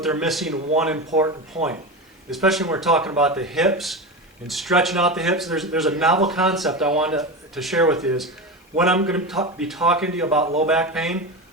they're missing one important point, especially when we're talking about the hips and stretching out the hips. There's a novel concept I wanted to share with you is when I'm going to be talking to you about low back pain,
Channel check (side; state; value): both; normal; correlation 0.22